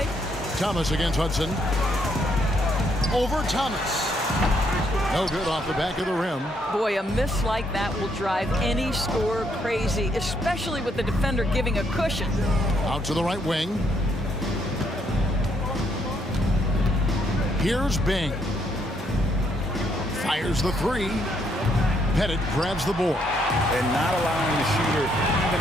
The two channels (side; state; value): both; normal; correlation 0.73